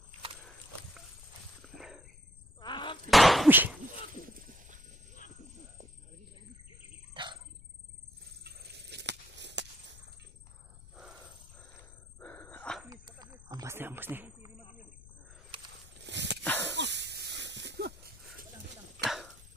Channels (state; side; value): noise; left; rumble, 20 dB below the sound